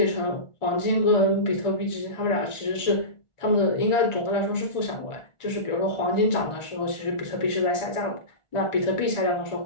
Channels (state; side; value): late; right; 1.4 ms